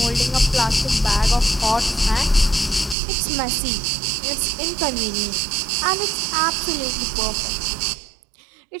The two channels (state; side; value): drops out; left; at 3.0 s